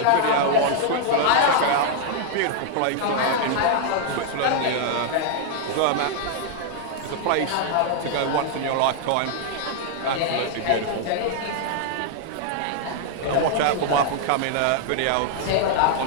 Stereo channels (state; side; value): different; both; correlation 0.00